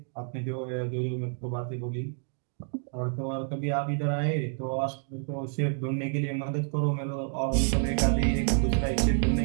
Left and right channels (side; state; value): left; silent; 59 dB below the other